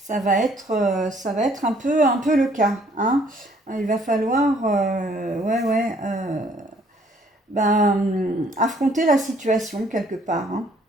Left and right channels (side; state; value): both; normal; correlation 0.62